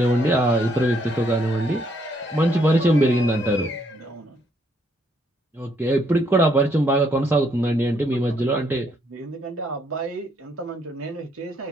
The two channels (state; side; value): normal; both; correlation 0.71